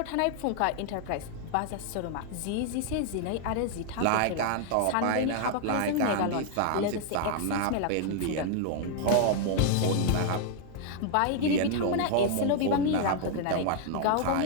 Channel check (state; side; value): different; both; correlation 0.00